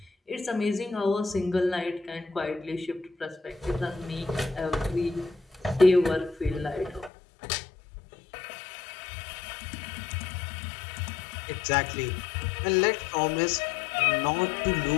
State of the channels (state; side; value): drops out; right; at 7.1 s